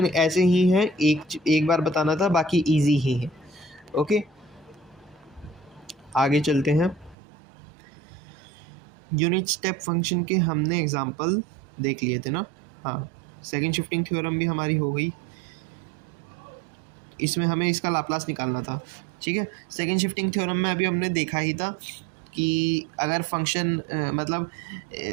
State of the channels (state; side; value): drops out; left; at 7.2 s